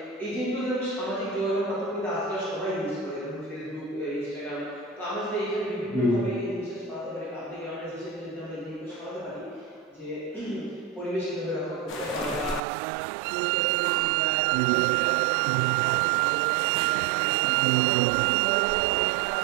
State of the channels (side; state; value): left; drops out; at 12.6 s